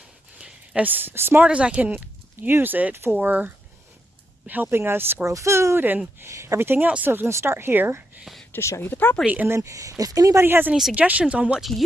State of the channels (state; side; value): normal; both; correlation 0.82